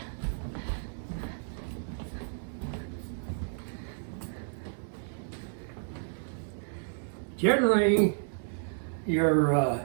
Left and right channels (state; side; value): silent; left; 57 dB below the other